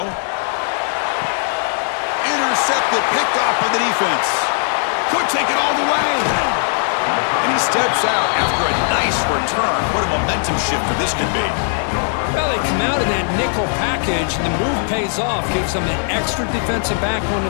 Intercepted, picked off by the defense. Could take it all the way. And he steps out after a nice return. What a momentum shifter this could be. Well, they come out of that nickel package, and the move pays off. Gives them an extra defensive back on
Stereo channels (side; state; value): right; silent; 67 dB below the other